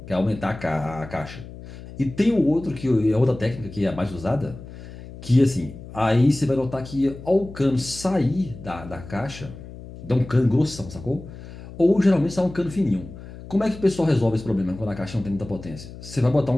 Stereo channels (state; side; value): noise; left; hum, 15 dB below the sound